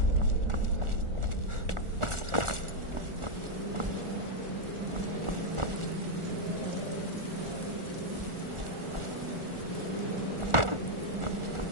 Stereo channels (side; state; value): left; late; 1.4 ms